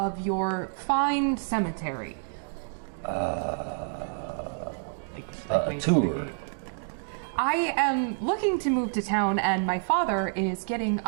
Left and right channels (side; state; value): left; silent; digital silence